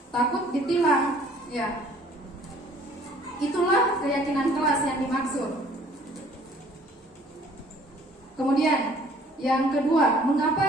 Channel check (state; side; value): normal; both; correlation 0.56